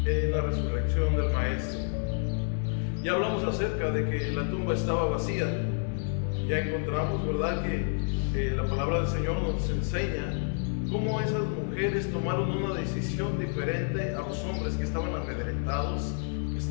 en la resurrección del Maestro. Ya hablamos acerca de que la tumba estaba vacía. Ya encontramos, ¿verdad?, que la palabra del Señor nos enseña cómo esas mujeres tomaron una decisión diferente a los hombres que estaban amedrentados, que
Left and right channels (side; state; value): right; silent; 58 dB below the other